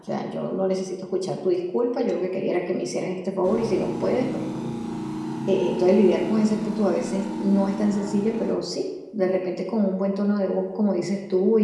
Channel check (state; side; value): identical; both; correlation 1.00